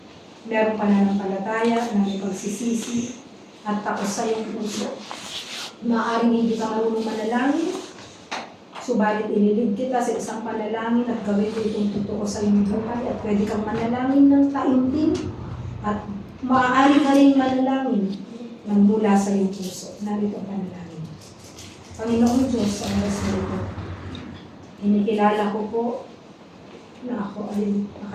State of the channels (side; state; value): both; identical; correlation 1.00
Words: meron pananampalataya, na may pagsisisi at takos sa iyong puso. Maaaring hindi ka marunong manalangin, subalit ililid kita sa isang panalangin at gawin ko itong totoo sa iyong buhay at pwede kang manalangin ng taimtim at maaari ka rin manalangin ng mula sa iyong puso. Narito ang panalangin. Panginoong Diyos, sa oras na ito, inikilala ko po na ako ay